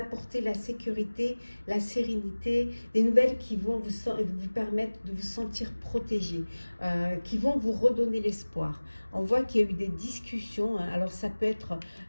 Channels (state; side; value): inverted; both; correlation -1.00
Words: la sécurité, la sérénité, des nouvelles qui vont vous permettre de vous sentir protégé, qui vont vous redonner l'espoir. On voit qu'il y a eu des discussions, hein. Alors ça peut être